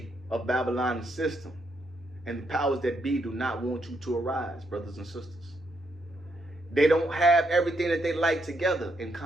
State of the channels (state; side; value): normal; both; correlation 0.77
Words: of Babylon's system and the powers that be do not want you to arise, brothers and sisters. They don't have everything that they like together in